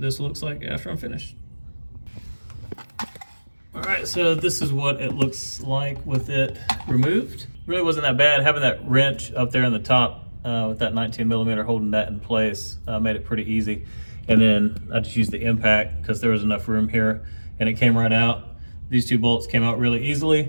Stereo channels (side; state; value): both; inverted; correlation -1.00